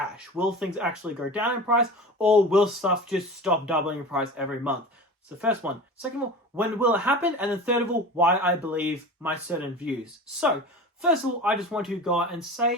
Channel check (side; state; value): both; normal; correlation 0.33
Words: Will things actually go down in price, or will stuff just stop doubling in price every month? It's the first one. Second of all, when will it happen? And then third of all, why I believe my certain views. So, first of all, I just want to go out and say,